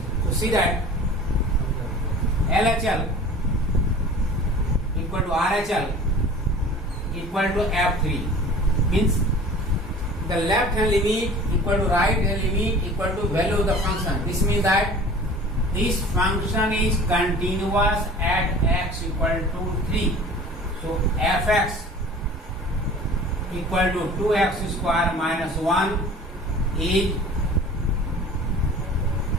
So see that LHL equal to RHL equal to f3. Means the left hand limit equal to right hand limit equal to value of the function. This means that this function is continuous at x equal to 3. So fx equal to 2x square minus 1 is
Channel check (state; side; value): normal; both; correlation 0.43